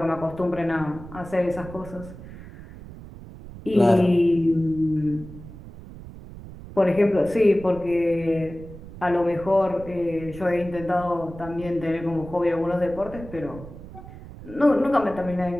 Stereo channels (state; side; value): noise; right; rumble, 15 dB below the sound